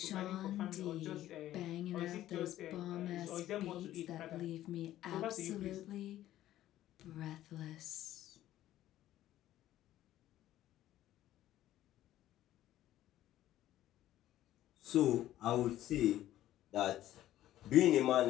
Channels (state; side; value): quieter; right; 13.5 dB